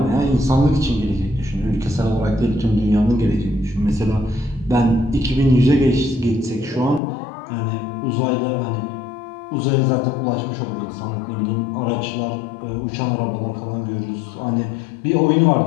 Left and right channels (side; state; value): right; drops out; at 7.0 s